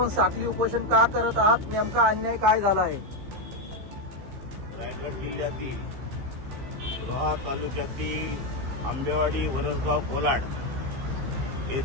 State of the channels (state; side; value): late; left; 15 ms